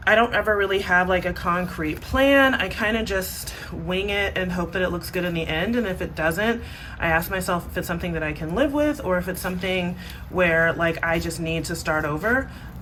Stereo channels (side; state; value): both; identical; correlation 1.00